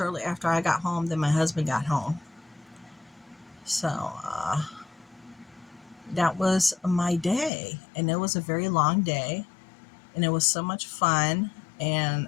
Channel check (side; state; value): right; drops out; at 7.5 s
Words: after I got home, then my husband got home. So, that was my day. And it was a very long day. And it was so much fun.